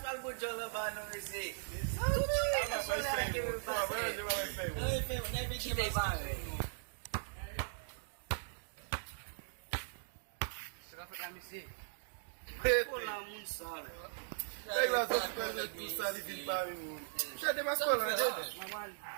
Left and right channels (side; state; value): left; silent; digital silence